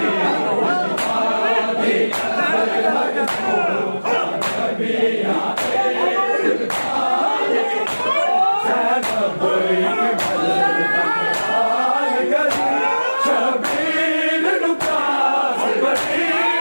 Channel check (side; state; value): both; inverted; correlation -1.00